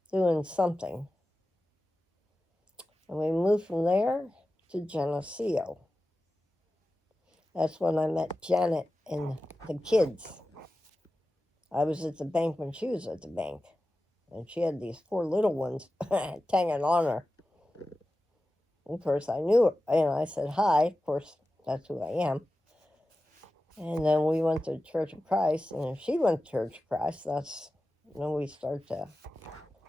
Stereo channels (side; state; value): both; normal; correlation 0.94